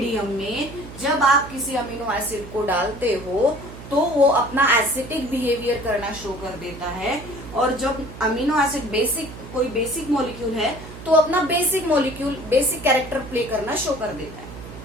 में जब आप किसी अमीनो एसिड को डालते हो तो वो अपना एसिडिक बिहेवियर करना शो कर देता है, और जब अमीनो एसिड कोई बेसिक मॉलिक्यूल है तो अपना बेसिक कैरेक्टर प्ले करना शो कर देता है।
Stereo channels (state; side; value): noise; right; hum, 14 dB below the sound